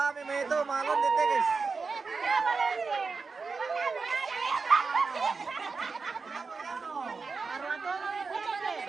mo ito, malon dito guys.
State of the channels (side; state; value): left; quieter; 4.6 dB